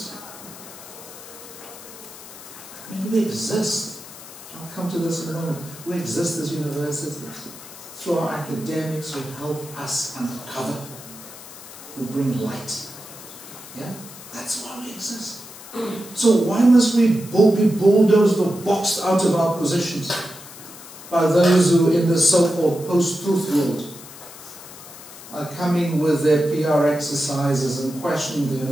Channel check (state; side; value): noise; left; hiss, 16 dB below the sound